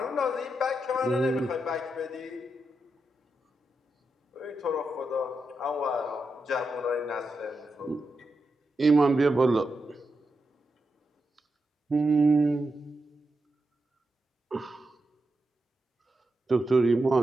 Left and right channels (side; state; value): both; normal; correlation 0.87